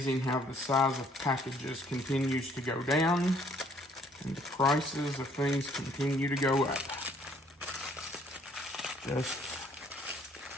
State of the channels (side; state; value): both; normal; correlation 0.62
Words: how the size of packages continues to go down and the prices of things continue to go up.